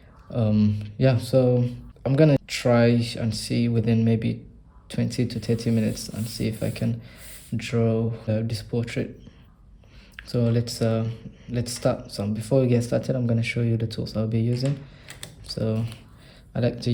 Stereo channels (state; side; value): identical; both; correlation 1.00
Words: Yeah, so I'm gonna try and see within maybe 20 to 30 minutes and see if I can draw this portrait. So let's start. So before we get started, I'm going to show you the tools I'll be using. So I like to